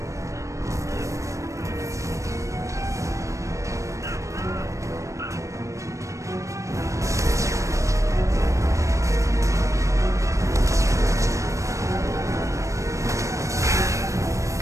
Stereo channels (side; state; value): left; late; 0.15 ms